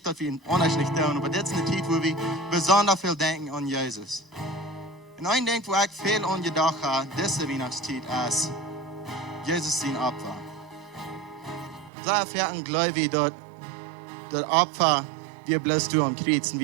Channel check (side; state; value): left; drops out; at 11.9 s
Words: dass wir ihn anders nicht tun, aber das ist eine Zeit, wo wir besonders viel denken an Jesus. Und ein Ding, wo ich viel an gedacht habe, diese Weihnachtszeit, ist Jesus sein Opfer. Sehr viel glaube ich, dass das Opfer wir bloß tun am Kreuz und